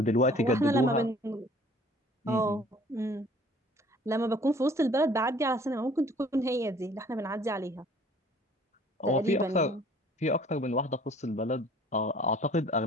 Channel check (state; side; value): normal; both; correlation 0.53